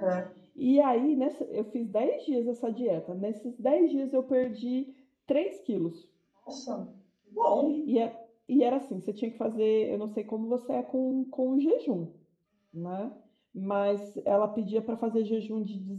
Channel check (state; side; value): identical; both; correlation 1.00